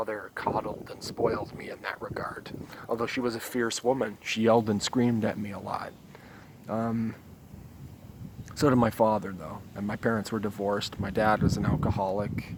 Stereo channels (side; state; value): both; identical; correlation 1.00